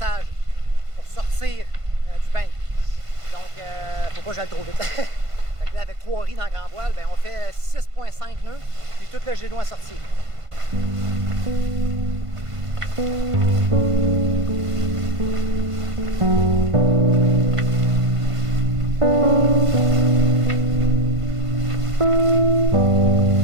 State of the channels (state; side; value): late; left; 1.5 ms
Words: pour sortir du bain. Donc, faut pas que j'aille trop vite. Fait que là, avec 3 riz dans grand voile, ben, on fait 6,5 nœuds, puis tout le génois sorti.